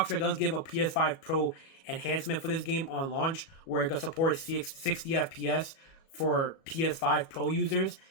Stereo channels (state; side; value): late; right; 37 ms